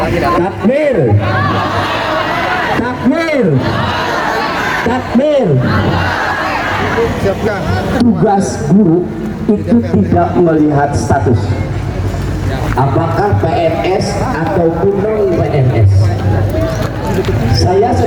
Takbir. Takbir. Takbir. Tugas guru itu tidak melihat status, apakah PNS ataupun non PNS. Saya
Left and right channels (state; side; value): identical; both; correlation 1.00